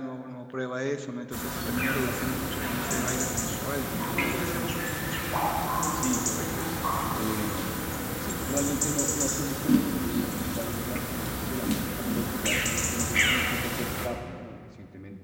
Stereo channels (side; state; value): both; identical; correlation 1.00